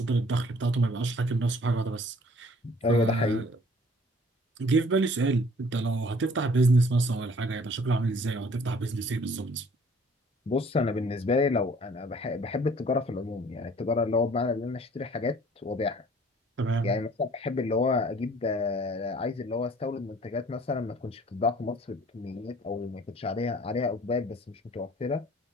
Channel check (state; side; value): normal; both; correlation 0.54